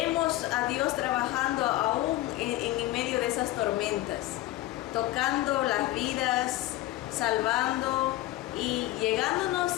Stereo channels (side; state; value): right; quieter; 16.5 dB